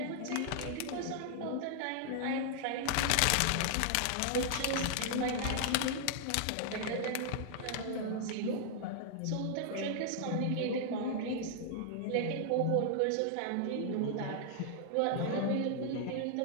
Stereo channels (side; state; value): both; different; correlation 0.00